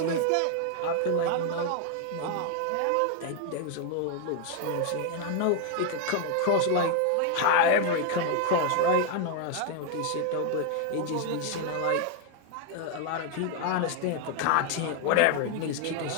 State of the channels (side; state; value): both; different; correlation 0.00